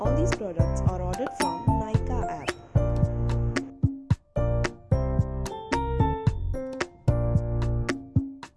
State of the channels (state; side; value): identical; both; correlation 1.00